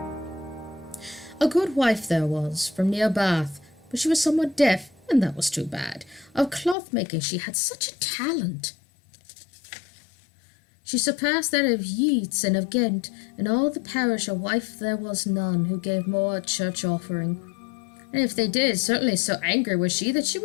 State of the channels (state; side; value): drops out; right; at 6.8 s